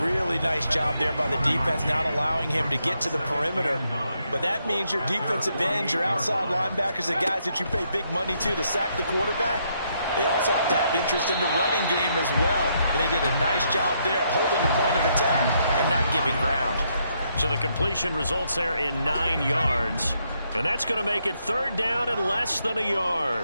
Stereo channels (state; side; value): inverted; both; correlation -0.76